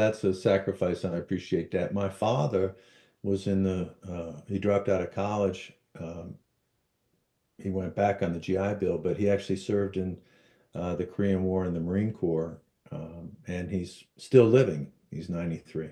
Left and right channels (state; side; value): identical; both; correlation 1.00